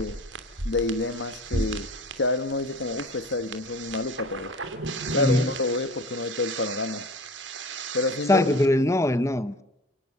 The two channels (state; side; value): normal; both; correlation 0.40